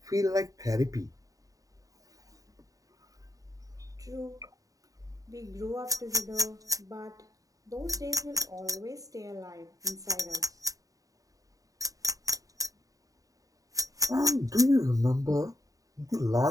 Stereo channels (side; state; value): left; late; 0.17 ms